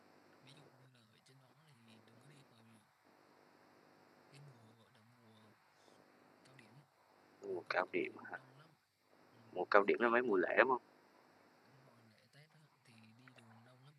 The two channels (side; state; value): both; identical; correlation 1.00